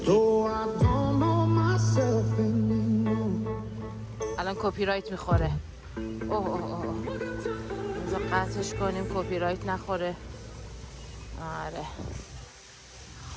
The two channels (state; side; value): identical; both; correlation 1.00